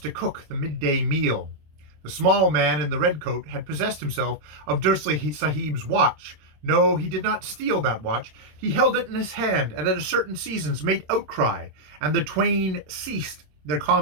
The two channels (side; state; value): left; late; 26 ms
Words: to cook the midday meal. The small man in the red coat had possessed himself of Dursley Sahib's watch. No, he did not steal that watch. He held it in his hand, and at certain seasons made outcry, and the twain ceased their